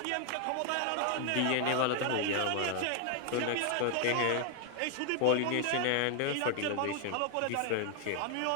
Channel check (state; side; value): different; both; correlation 0.00